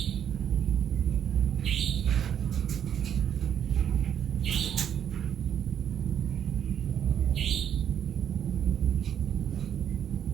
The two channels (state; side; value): quieter; left; 9.1 dB